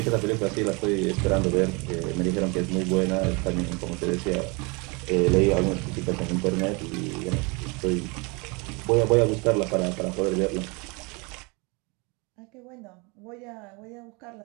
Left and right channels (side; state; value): left; quieter; 29.4 dB